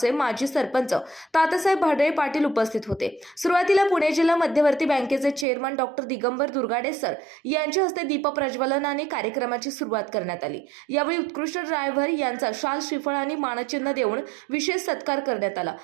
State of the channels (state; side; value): drops out; left; at 5.5 s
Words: माजी सरपंच तात्यासाहेब भाडळे पाटील उपस्थित होते। सुरुवातीला पुणे जिल्हा मध्यवर्ती बँकेचे chairman doctor Digambar Durgade sir यांच्या हस्ते दीप प्रज्वलनाने कार्यक्रमाची सुरुवात करण्यात आली। यावेळी उत्कृष्ट ड्रायव्हर यांचा शाल श्रीफळ आणि मानचिन्ह देऊन विशेष सत्कार करण्यात आला।